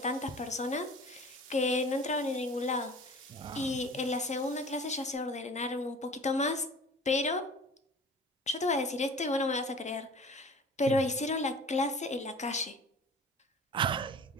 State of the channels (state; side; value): normal; both; correlation 0.43